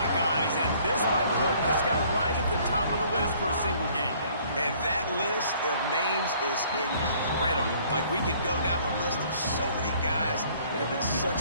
and this might put this guy right at the top of the list for a single game. And that list of names is incredible. Like, we could go down the list of so many guys that have been such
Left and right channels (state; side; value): inverted; both; correlation -0.58